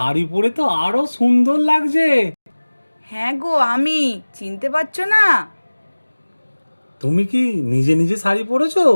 পরে তো আরো সুন্দর লাগছে। হ্যাঁ গো, আমি, চিনতে পারছো না? তুমি কি নিজে নিজে শাড়ি পরেছো?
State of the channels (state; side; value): inverted; both; correlation -1.00